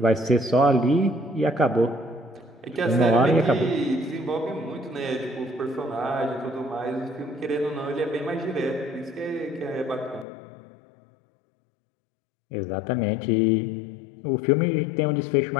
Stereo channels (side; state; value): right; drops out; at 10.2 s